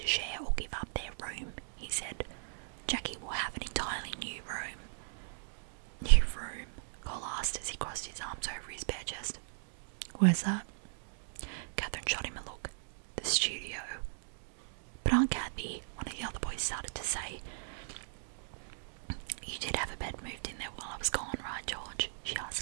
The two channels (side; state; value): left; silent; digital silence